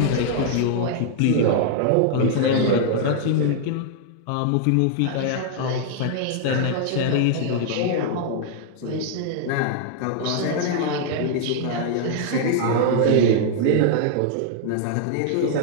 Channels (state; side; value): different; both; correlation -0.01